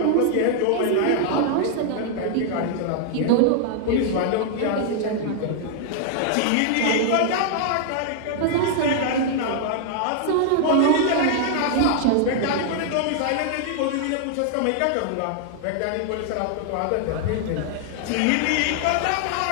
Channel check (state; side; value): different; both; correlation 0.00